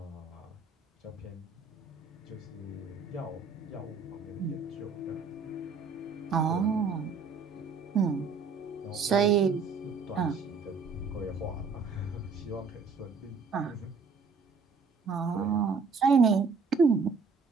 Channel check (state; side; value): quieter; left; 4.8 dB